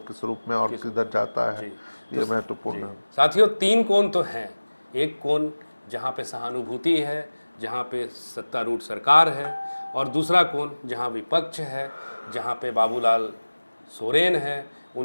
रूप में और किधर जाता है, ये महत्वपूर्ण है। साथियों 3 कोण तो हैं, एक कोण जहाँ पे सहानुभूति है, जहाँ पे सत्तारूढ़ सरकार है, और दूसरा कोण जहाँ विपक्ष है, जहाँ पे बाबूलाल सोरेन है,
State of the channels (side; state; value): both; inverted; correlation -1.00